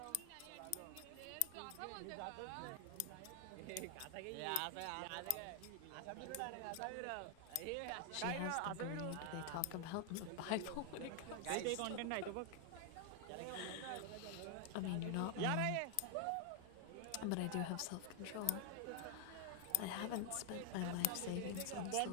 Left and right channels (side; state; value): both; different; correlation 0.00